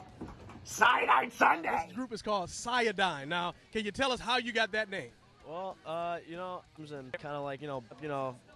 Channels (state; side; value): identical; both; correlation 1.00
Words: CYADINE Sunday! This group is called CYADINE. Now, can you tell us how you got that name? Well, you know, and kind of like,